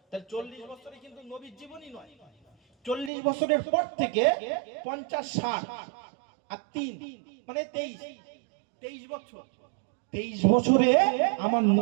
তাহলে 40 বছরে কিন্তু নবীর জীবনই নয়, 40 বছরের পর থেকে 50 60 আর 3 মানে 23 বছর। 23 বছরে আমার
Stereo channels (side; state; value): left; drops out; at 3.1 s